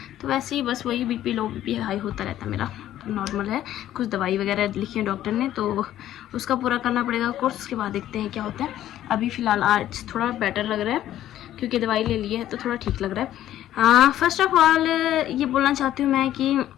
तो वैसे ही बस वही बीपी लो, बीपी हाई होता रहता है मेरा, तो नॉर्मल है। कुछ दवाई वगैरह लिखी है डॉक्टर ने, तो उसका पूरा करना पड़ेगा कोर्स। उसके बाद देखते हैं क्या होता है। अभी फ़िलहाल आज थोड़ा बेटर लग रहा है क्योंकि दवाई ले ली है, तो थोड़ा ठीक लग रहा है। फर्स्ट ऑफ ऑल ये बोलना चाहती हूँ मैं कि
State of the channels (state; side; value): quieter; right; 12.6 dB